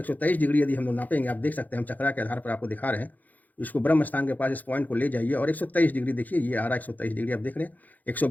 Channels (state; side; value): late; right; 0.081 ms